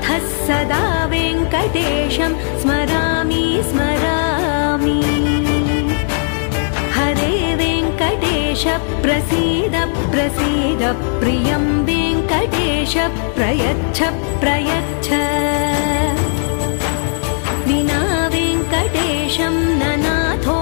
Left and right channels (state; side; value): silent; right; 68 dB below the other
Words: सदा वेङ्कटेशं स्मरामि स्मरामि हरे वेङ्कटेश प्रसीद प्रसीद प्रियं वेङ्कटेश प्रयच्छ प्रयच्छ